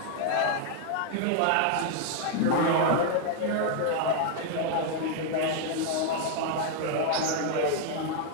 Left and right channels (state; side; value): different; both; correlation 0.00